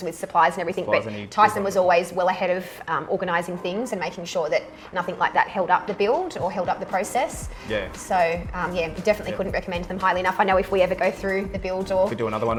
with supplies and everything, but Tyson was always well ahead of organising things and making sure that nothing like that held up the build or held up the process. So we definitely couldn't recommend them highly enough. I know if we ever go through the build or we do another one,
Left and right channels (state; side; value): identical; both; correlation 1.00